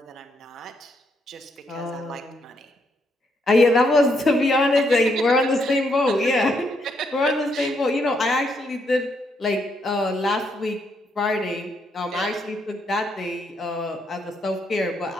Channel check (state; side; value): normal; both; correlation 0.76